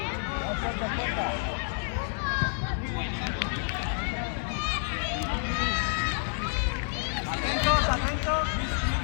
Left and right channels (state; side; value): silent; right; 58 dB below the other